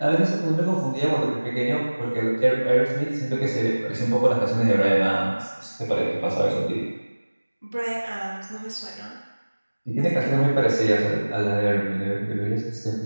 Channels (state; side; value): inverted; both; correlation -1.00